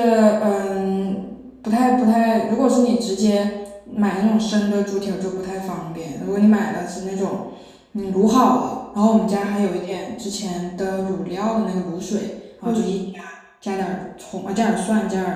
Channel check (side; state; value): both; identical; correlation 1.00